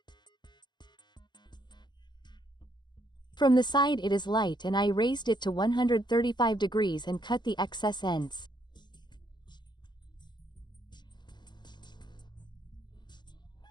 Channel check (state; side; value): late; right; 0.21 ms